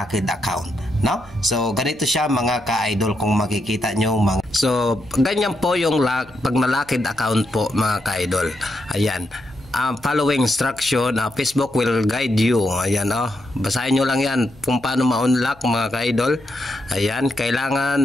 account, no? So ganito siya mga ka-idol, kung makikita nyo so ganyan po yung pag na-locked account po mga ka-idol. Ayan, following instruction, Facebook will guide you. Ayan, basahin nyo lang yan kung paano ma-unlock mga ka-idol. Ayan,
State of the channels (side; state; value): left; noise; hum, 27 dB below the sound